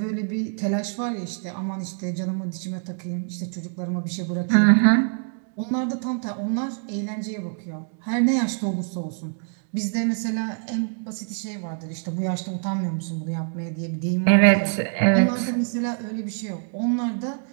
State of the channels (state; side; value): silent; left; 55 dB below the other